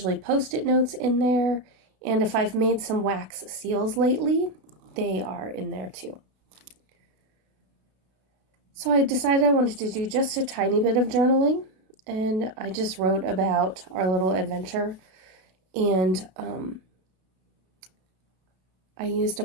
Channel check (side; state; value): left; late; 33 ms